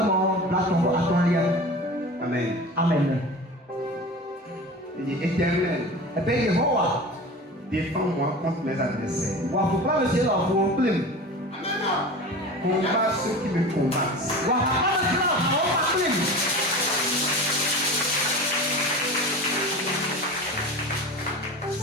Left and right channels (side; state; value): both; normal; correlation 0.33